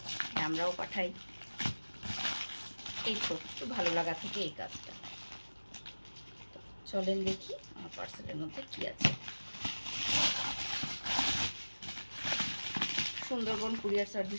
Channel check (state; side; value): inverted; both; correlation -1.00